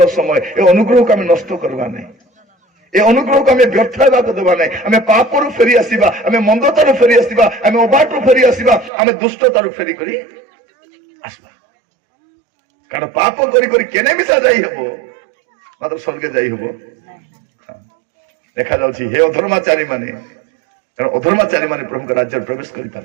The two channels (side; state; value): left; drops out; at 8.9 s